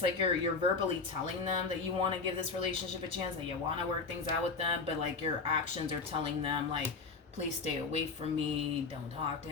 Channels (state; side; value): quieter; right; 4.4 dB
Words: like you're verbally telling them that you want to give this relationship a chance, that you want to work things out with them, but like your actions are telling them like, please stay away from me, don't talk